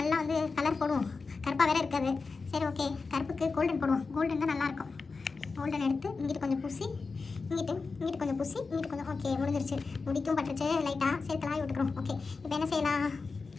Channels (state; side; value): quieter; right; 4.4 dB